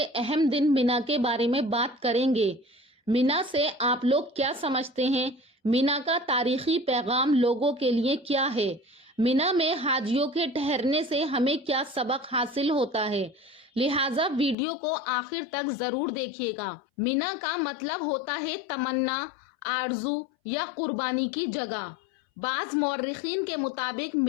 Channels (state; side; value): drops out; right; at 14.6 s